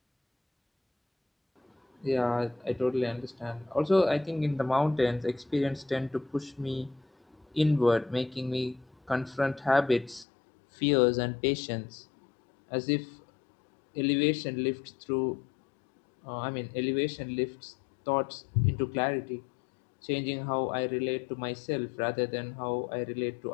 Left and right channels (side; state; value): right; drops out; at 10.2 s